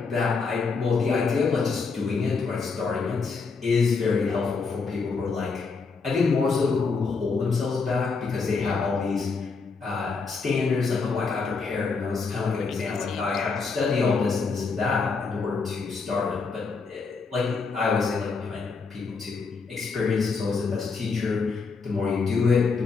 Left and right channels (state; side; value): quieter; right; 4.7 dB